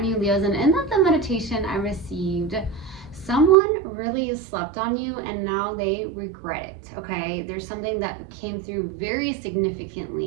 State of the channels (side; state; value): left; drops out; at 3.6 s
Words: you Leos, and in the meditation I received, someone really slept on you and now they regret it. Okay, there's something that came through very